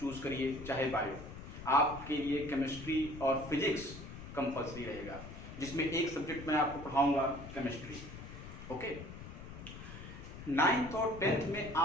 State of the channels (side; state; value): left; noise; rumble, 12 dB below the sound